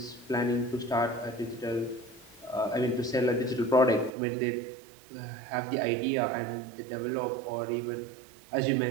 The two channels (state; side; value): drops out; left; at 4.1 s